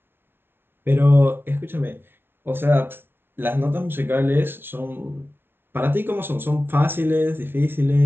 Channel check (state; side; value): late; left; 0.11 ms